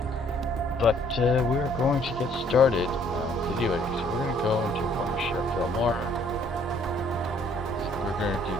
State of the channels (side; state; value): both; normal; correlation 0.62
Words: but we are going to get started video editing. So we're going to go into Wondershare Filmora. So we're going to do